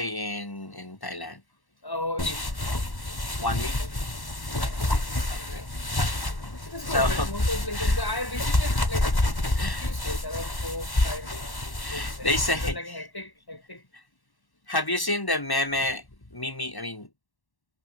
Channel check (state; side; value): late; right; 1.1 ms